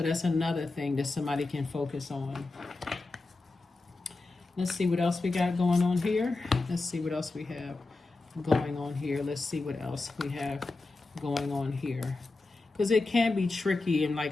that's another thing that somebody can focus on. Let's see what else we got going on here. Let's see what else we have going on here. Let's see what else we have going on here. Because it can be tricky, and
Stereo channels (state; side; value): quieter; right; 3.4 dB